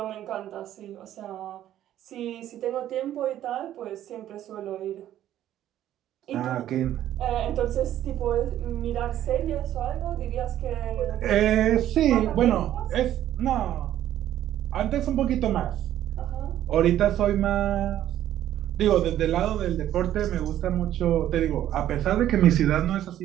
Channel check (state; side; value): quieter; left; 12.1 dB